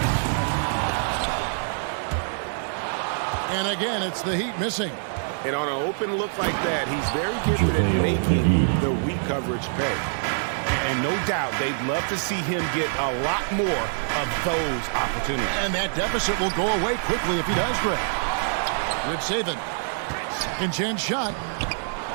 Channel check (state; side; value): silent; left; digital silence